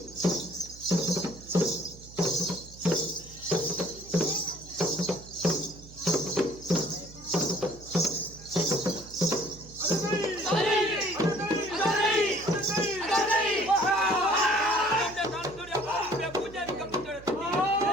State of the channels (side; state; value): right; noise; hum, 19 dB below the sound